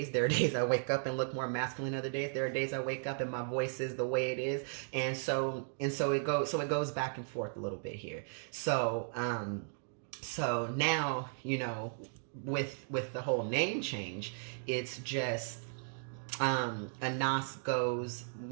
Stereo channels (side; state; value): left; silent; digital silence